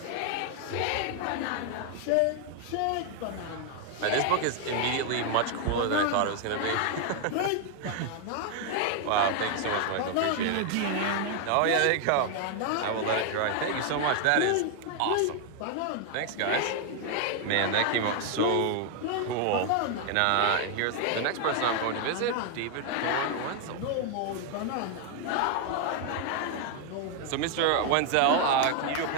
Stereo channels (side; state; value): both; different; correlation 0.00